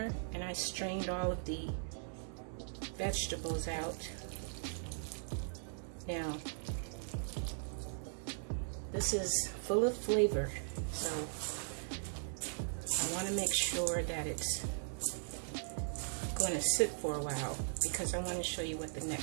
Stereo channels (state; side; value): silent; left; 52 dB below the other